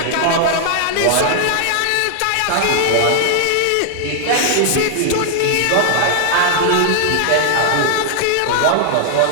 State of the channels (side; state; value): both; different; correlation 0.00